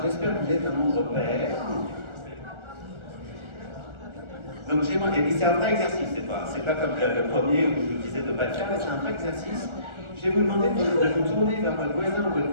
j'espère que vous êtes un nombre pair. Donc et c'est un vrai exercice, c'est pas comme le premier où je vous disais de ne pas le faire, mais c'est un vrai exercice. Je vais vous demander de vous tourner vers votre voisin ou votre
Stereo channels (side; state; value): left; late; 1.4 ms